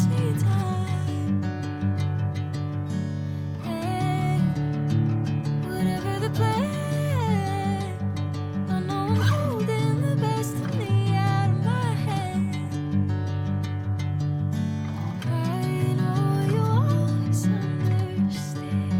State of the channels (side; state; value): both; identical; correlation 1.00